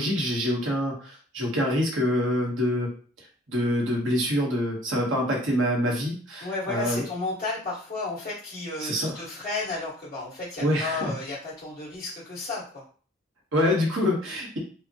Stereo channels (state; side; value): normal; both; correlation 0.52